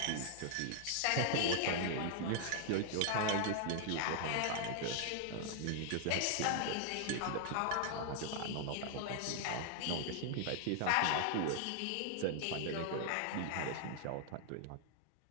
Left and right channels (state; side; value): different; both; correlation -0.01